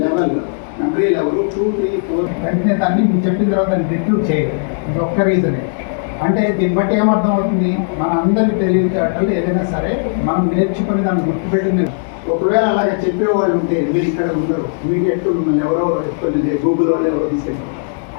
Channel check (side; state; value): right; silent; 64 dB below the other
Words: లెవెల్ 2, 3, 4 వెంటనే దాన్ని మీరు చెప్పిన తర్వాత దాన్ని రిట్రూవ్ చేయలేదు. ఇది ఒక్క రీజనే. అంటే దీన్ని బట్టి ఏమర్థం అవుతుంది, మన అందరి తెలివితేటలు ఏదైనా సరే మనం నేర్చుకుని దాన్ని గుర్తుపెట్టింది. ఒకవేళ అలాగే చెప్పేవాళ్ళు ఉంటే మీరు ఇక్కడ ఉండరు, ఇమీడియట్ మిమ్మల్ని ఎవరో కొన్ని గూగుల్ వాళ్ళు ఎవరో తీసుకెళ్ళారు.